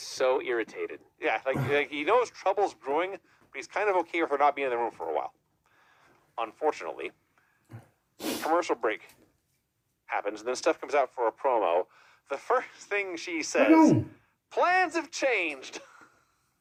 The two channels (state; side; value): identical; both; correlation 1.00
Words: so irritated. yeah, like he knows trouble's brewing, but he's kind of okay with her not being in the room for a while. Unfortunately, commercial break happens, and then Steph comes out for a promo. The first thing she says, plans have changed.